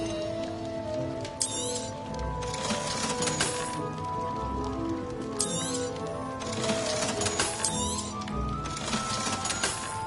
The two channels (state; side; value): identical; both; correlation 1.00